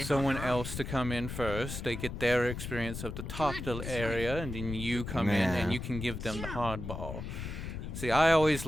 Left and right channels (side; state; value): left; noise; rumble, 7 dB below the sound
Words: someone else to come in first. They get their experience of the top area, and then you come in Yeah. and you can give them the hardball. See, I always